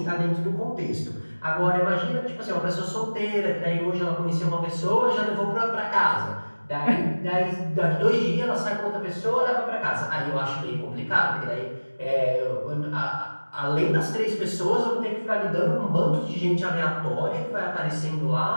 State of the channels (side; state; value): both; inverted; correlation -1.00